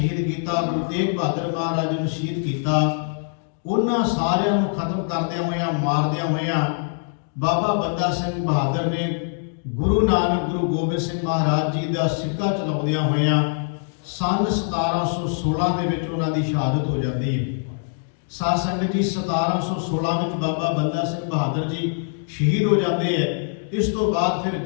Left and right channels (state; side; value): silent; right; digital silence